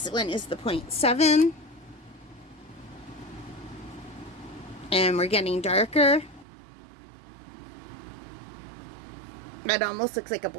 one is the 0.7. And we're getting darker. That almost looks like a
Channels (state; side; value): drops out; left; at 6.5 s